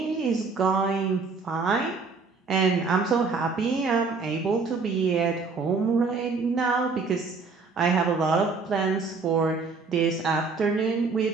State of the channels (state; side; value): quieter; left; 4.5 dB